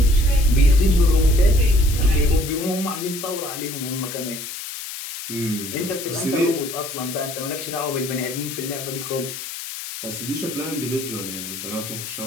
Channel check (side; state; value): left; noise; hiss, 9 dB below the sound